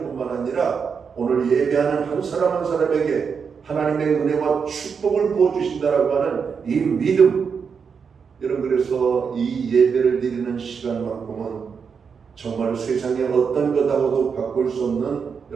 뿐만 아니라 오늘 예배하는 한 사람 한 사람에게 하나님의 은혜와 축복을 부어주신다라고 하는 이 믿음. 여러분 그래서 이 예배를 드리는 시간만큼은 정말 세상에 어떤 것하고도 바꿀 수 없는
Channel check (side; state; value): left; quieter; 6.1 dB